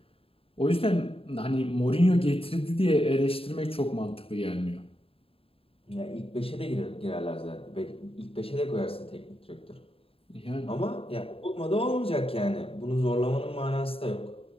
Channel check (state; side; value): late; right; 0.27 ms